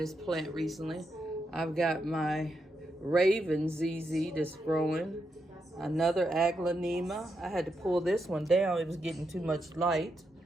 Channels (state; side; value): normal; both; correlation 0.83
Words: plant recently. I've got my Raven ZZ that's growing. Another aglaonema. I had to pull this one down. It was getting too much light.